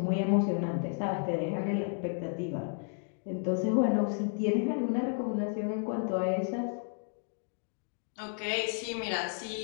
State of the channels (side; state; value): right; silent; 56 dB below the other